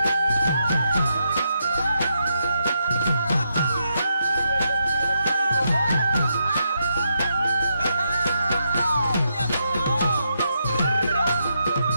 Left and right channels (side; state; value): both; inverted; correlation -0.81